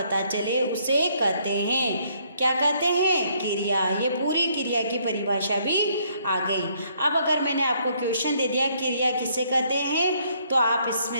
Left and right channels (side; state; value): both; inverted; correlation -0.68